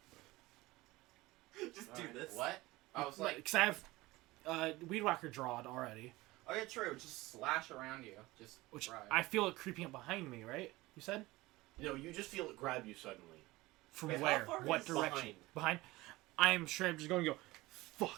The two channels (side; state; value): left; quieter; 19.8 dB